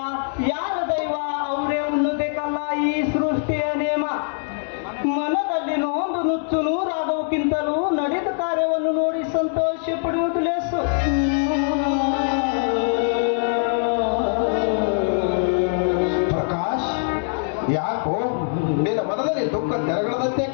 ಯಾರ ದೈವ ಅವರೇ ಉಣ್ಣಬೇಕಲ್ಲ ಈ ಸೃಷ್ಟಿಯ ನೇಮ. ಮನದಲ್ಲಿ ನೋಂದು ನುಚ್ಚು ನೂರಾದವಕ್ಕಿಂತಲೂ ನಡೆದ ಕಾರ್ಯವನ್ನು ನೋಡಿ ಸಂತೋಷ ಪಡುವುದು ಲೇಸು. ಪ್ರಕಾಶ್, ಯಾಕೋ ನಿನ್ನ ಮನದಲ್ಲಿ ದುಃಖ ತೆರಗಳದಂತೆ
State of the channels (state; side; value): silent; right; digital silence